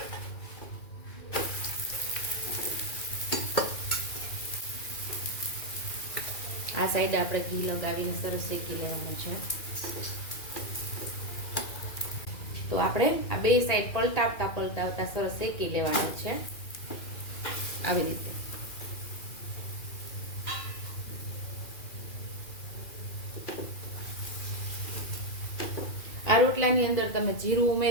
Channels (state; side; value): late; right; 2.4 ms